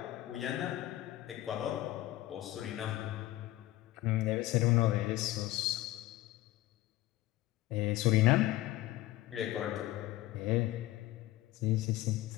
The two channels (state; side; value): quieter; right; 16.4 dB